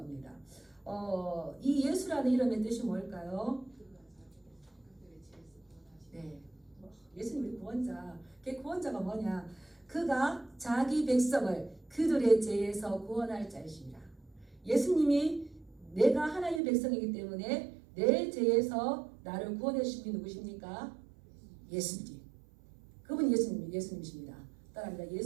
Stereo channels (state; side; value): drops out; left; at 16.6 s